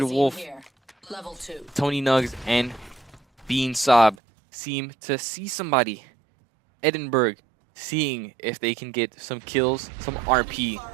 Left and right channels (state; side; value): drops out; left; at 4.2 s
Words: magazine Wolf, here. Level 2. Tony Nugs, and Bean Sob seem to see somebody. Edinburgh seeing if they can get some kills, some RP